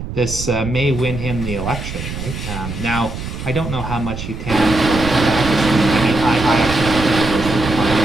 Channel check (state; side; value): noise; right; rumble, 7 dB below the sound